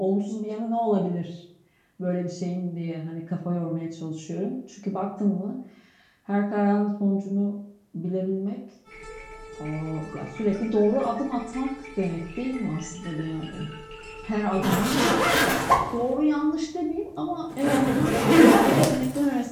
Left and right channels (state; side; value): identical; both; correlation 1.00